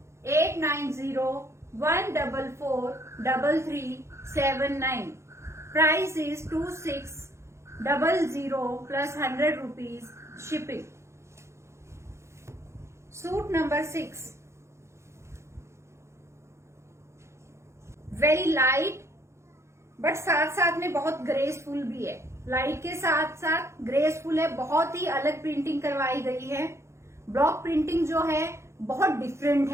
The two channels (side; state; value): left; late; 0.13 ms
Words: 8901443379. Price is 2600 plus 100 rupees shipping. Suit number 6. Very light but साथ साथ में बहुत ग्रेसफुल भी है। लाइट के साथ साथ ग्रेसफुल है, बहुत ही अलग प्रिंटिंग करवाई गई है। ब्लॉक प्रिंटिंग जो है बहुत डिफरेंट